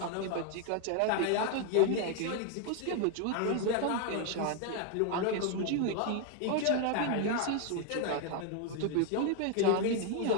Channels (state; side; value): different; both; correlation 0.01